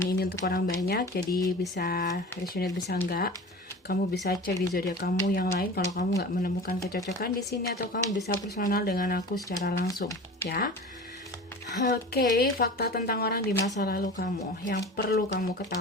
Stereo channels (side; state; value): both; normal; correlation 0.36